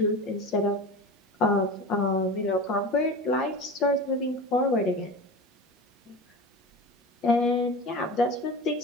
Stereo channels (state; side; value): normal; both; correlation 0.30